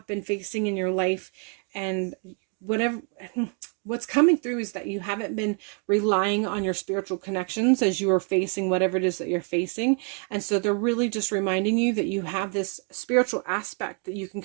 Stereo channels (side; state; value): left; quieter; 38.7 dB